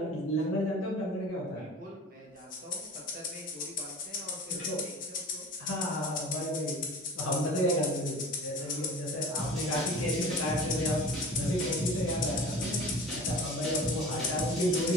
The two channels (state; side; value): normal; both; correlation 0.40